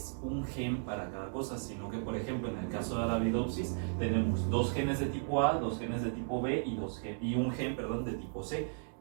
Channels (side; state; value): left; silent; digital silence